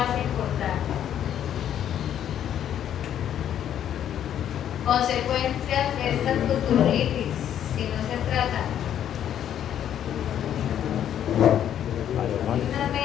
importante. Consecuencias de esta tutulitis, si no se trata. Unas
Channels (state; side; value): quieter; right; 10.2 dB